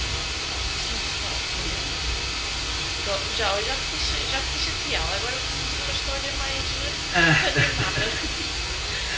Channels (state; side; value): identical; both; correlation 1.00